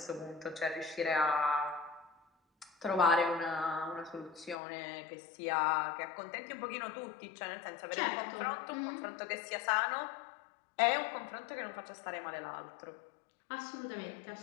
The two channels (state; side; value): drops out; right; at 4.5 s